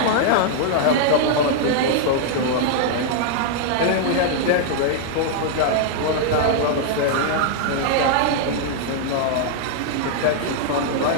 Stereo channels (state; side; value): different; both; correlation -0.01